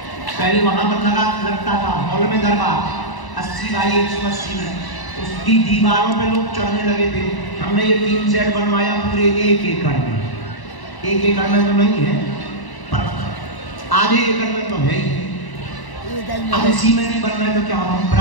पहले वहां पर लगता था हॉल में दरबार 80 बाई 180 में, उसकी दीवारों पे लोग चढ़ने लगे थे। हमने ये 3 सेट बनवाया पूरे 1 एकड़ में। 1 एकड़ में तो नहीं है पर आधे एकड़ में तो है ही। अब इसी में नहीं बन रहा है तो क्या हम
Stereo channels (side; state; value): right; late; 1.1 ms